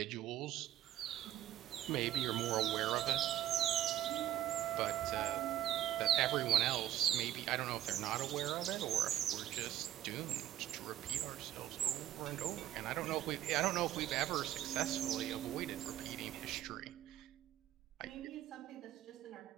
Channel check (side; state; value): left; quieter; 12.4 dB